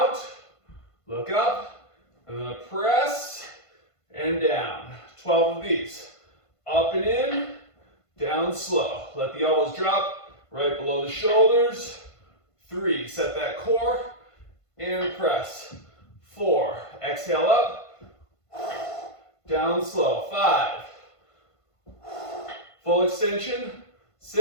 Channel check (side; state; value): right; late; 1.5 ms